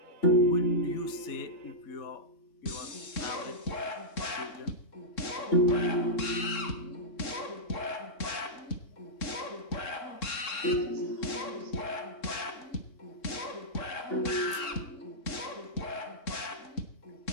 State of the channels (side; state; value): right; late; 3.7 ms